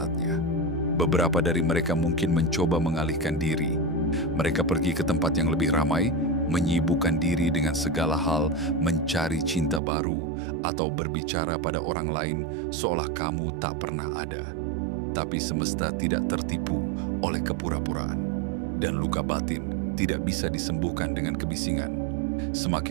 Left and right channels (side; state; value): left; drops out; at 9.8 s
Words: Beberapa dari mereka mungkin mencoba mengalihkan diri. Mereka pergi ke tempat yang lebih ramai, menyibukkan diri dengan segala hal, mencari cinta baru, atau berbicara pada orang lain seolah kamu tak pernah ada. Tapi semesta tidak tertipu oleh kepura-puraan, dan luka batin tidak bisa disembuhkan dengan kebisingan.